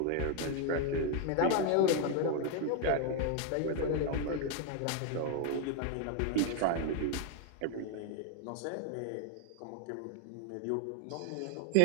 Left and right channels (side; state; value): both; different; correlation 0.01